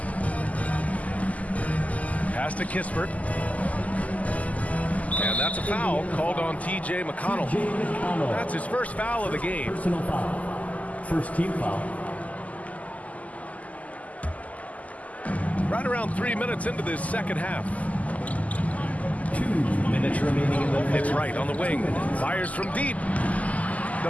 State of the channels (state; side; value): late; right; 0.074 ms